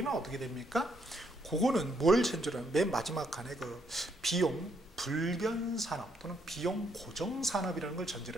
어떻게 됩니까? 그거는 뭘 전제로 맨 마지막 칸에 그 비용 불변 산업 또는 비용 고정 산업이라는 걸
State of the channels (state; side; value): normal; both; correlation 0.73